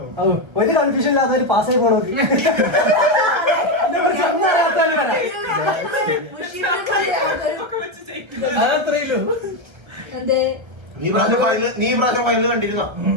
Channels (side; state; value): left; late; 1.3 ms